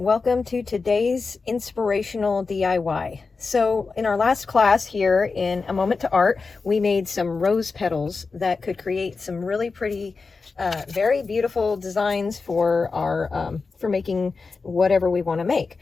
to today's inspirational DIY. So in our last class here in A Moment to Art, we made some rose petals that could create some really pretty, very beautiful designs for our, for making whatever we want to make.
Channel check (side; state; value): right; quieter; 4.4 dB